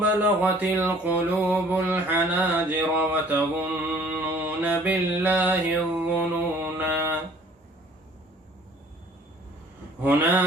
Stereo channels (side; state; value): both; normal; correlation 0.54